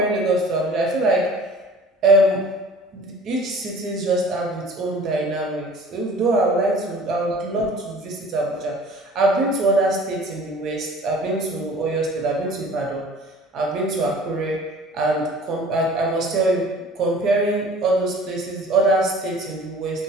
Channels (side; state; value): both; normal; correlation 0.46